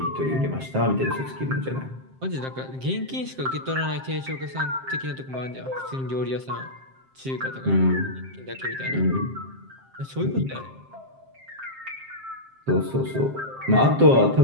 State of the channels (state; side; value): late; left; 7.6 ms